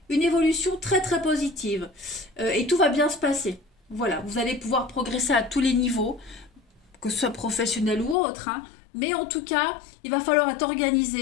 une évolution très très positive. Et tout va bien se passer. Voilà, vous allez pouvoir progresser à tous les niveaux, que ce soit professionnel ou autre. Hein, mais en tout cas, il va falloir être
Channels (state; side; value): drops out; right; at 8.2 s